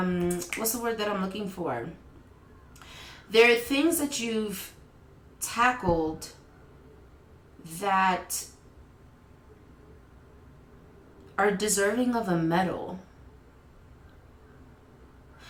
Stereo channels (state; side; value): identical; both; correlation 1.00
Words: what's the word that I'm looking for? There are things that you've tackled that are deserving of a medal.